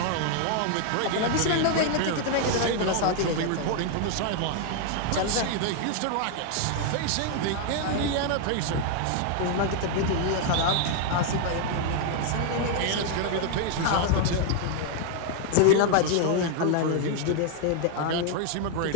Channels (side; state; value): both; different; correlation 0.00